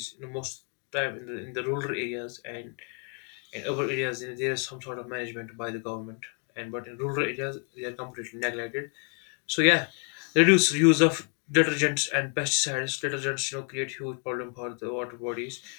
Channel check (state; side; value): quieter; right; 39.7 dB